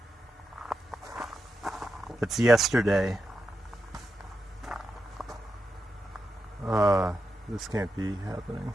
It's yesterday. This can't be happening.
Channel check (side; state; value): both; normal; correlation 0.87